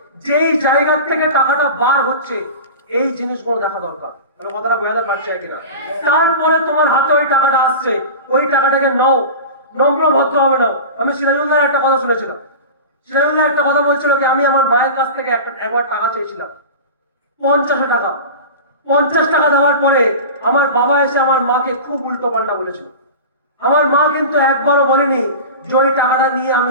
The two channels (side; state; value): both; inverted; correlation -0.31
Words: যেই জায়গা থেকে টাকাটা বার হচ্ছে, এই জিনিসগুলো দেখা দরকার। কথাটা বোঝাতে পারছে কিনা? তারপরে তোমার হাতে ওই টাকাটা আসছে, ওই টাকাটাকে নাও, নম্র ভদ্র হবে নাও। আমি সিরাজুল্লাহর একটা কথা শুনেছিলাম, সিরাজুল্লাহ একটা কথা বলছিল কি আমি আমার মায়ের কাছ থেকে একবার টাকা চেয়েছিলাম, 50 টাকা। 50 টাকা দেওয়ার পরে আমার বাবা এসে আমার মাকে খুব উল্টো পাল্টা বলেছিল। আমার মা কিন্তু একবারও বলেনি যে ওই টাকাটা নিয়ে